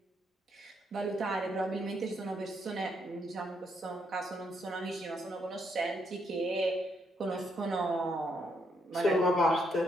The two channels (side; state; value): both; normal; correlation 0.76